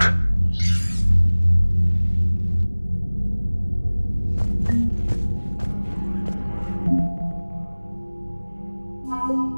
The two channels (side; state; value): both; inverted; correlation -1.00